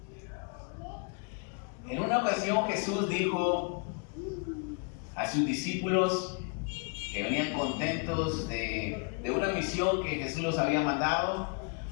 En una ocasión Jesús dijo a sus discípulos que venían contentos de una misión que Jesús los había mandado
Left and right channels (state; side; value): quieter; right; 36.2 dB